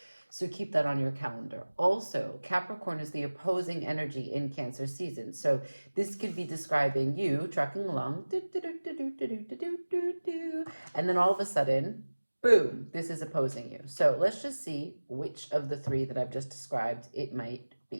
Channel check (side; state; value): both; inverted; correlation -1.00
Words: So keep that on your calendar. Also, Capricorn is the opposing energy in Cancer season. So this could be describing you trucking along, and then all of a sudden, boom, this is opposing you. So let's just see which of the three that I've just described it might